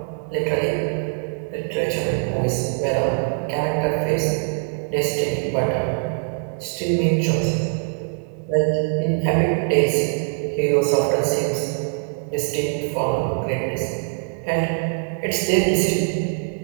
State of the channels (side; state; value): left; silent; 64 dB below the other